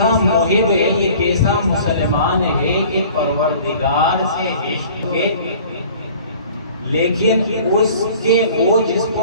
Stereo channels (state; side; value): inverted; both; correlation -0.48